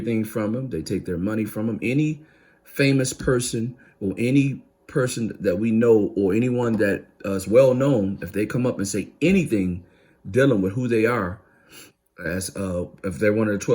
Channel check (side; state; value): both; identical; correlation 1.00